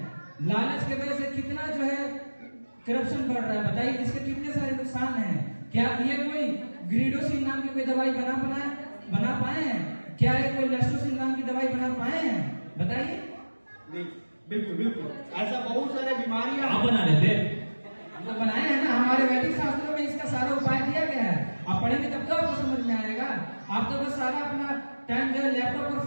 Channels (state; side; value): inverted; both; correlation -1.00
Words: लालच की वजह से कितना जो है करप्शन बढ़ रहा है। बताइए इसके कितने सारे नुकसान हैं। क्या ये कोई ग्रीडोसिन नाम की कोई दवाई बना पाए हैं? क्या ये कोई लेस्टोसिन नाम की दवाई बना पाए हैं? बताइए। नहीं, बिल्कुल बिल्कुल ऐसा बहुत सारे बीमारियां आप बना लेते तो बनाए हैं ना, हमारे वैदिक शास्त्रों में इसका सारा उपाय दिया गया है। आप पढ़ेंगे तब तो आपको समझ में आएगा। आप तो बस सारा अपना टाइम जो है लैपटॉप और